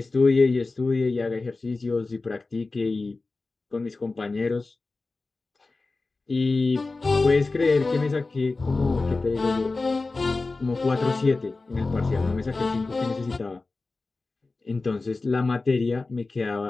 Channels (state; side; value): quieter; right; 3.6 dB